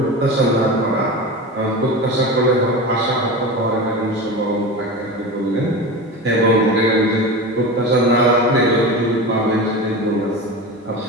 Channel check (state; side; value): normal; both; correlation 0.27